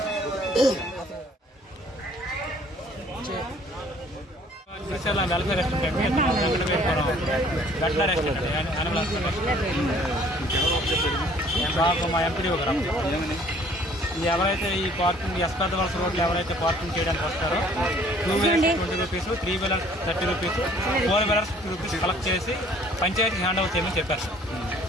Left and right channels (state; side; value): normal; both; correlation 0.56